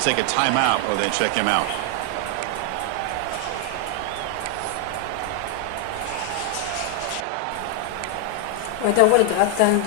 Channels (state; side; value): different; both; correlation 0.00